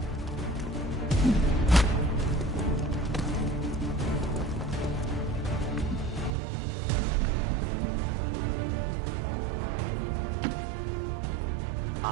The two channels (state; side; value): drops out; left; at 6.3 s